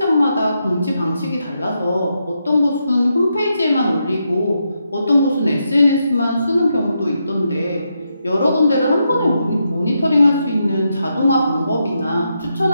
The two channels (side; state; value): both; inverted; correlation -0.83